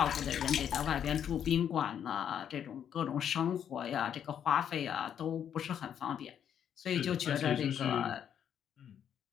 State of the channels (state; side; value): quieter; right; 9.0 dB